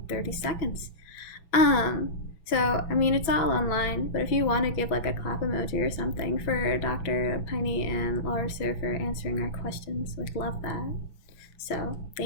30 seconds. So, it's all online, but if you want to give like a clap emoji or something for Dr. Pinney and Laura Sir for answering our questions, we'd love that. So,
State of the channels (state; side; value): late; right; 6.0 ms